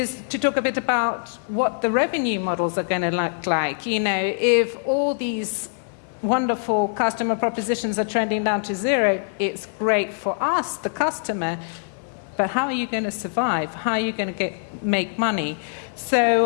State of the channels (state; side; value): silent; right; digital silence